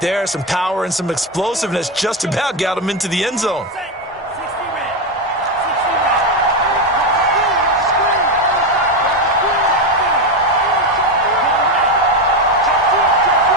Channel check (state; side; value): normal; both; correlation 0.10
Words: there. Some power and some explosiveness just about got him into the end zone.